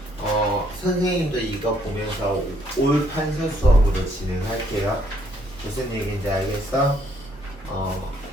선생님도 이거 보면서 올 판서 수업으로 진행할게요. 무슨 얘기인지 알겠어?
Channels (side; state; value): both; normal; correlation 0.68